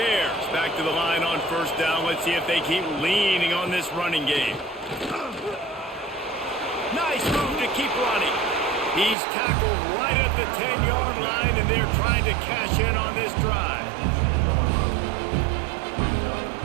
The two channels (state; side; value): drops out; left; at 9.2 s